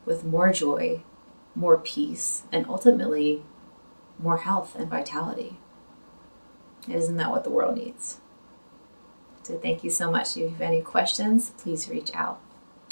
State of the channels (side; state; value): both; inverted; correlation -1.00